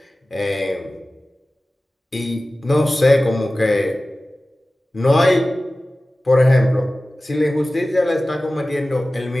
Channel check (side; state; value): both; normal; correlation 0.96